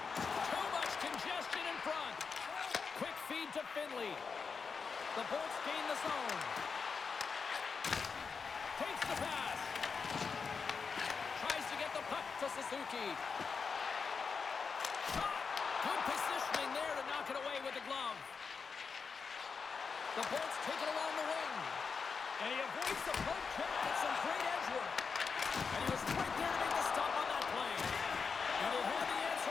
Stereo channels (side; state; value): right; quieter; 5.4 dB